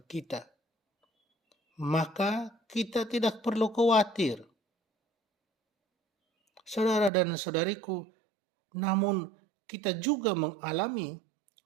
kita. Maka kita tidak perlu khawatir. Saudara dan saudariku, namun kita juga mengalami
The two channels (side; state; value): left; drops out; at 7.1 s